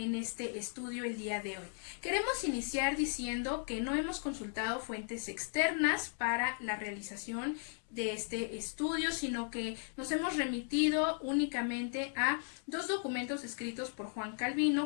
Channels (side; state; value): right; silent; 53 dB below the other